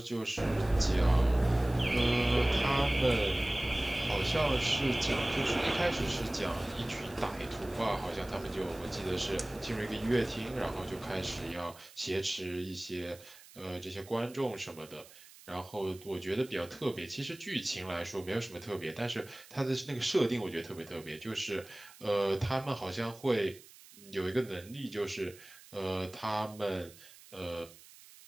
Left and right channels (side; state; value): right; noise; hiss, 21 dB below the sound